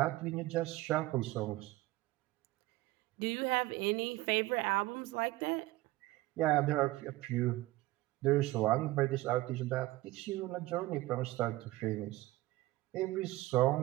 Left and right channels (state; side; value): quieter; left; 18.6 dB